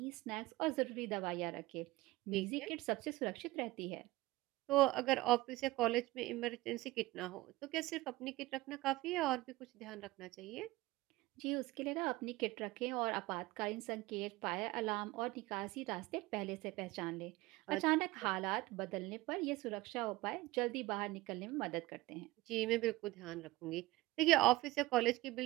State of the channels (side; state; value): left; quieter; 19.2 dB